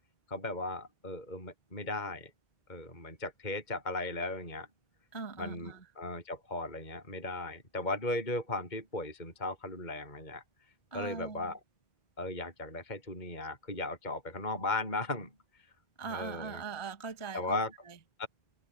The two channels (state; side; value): late; right; 2.2 ms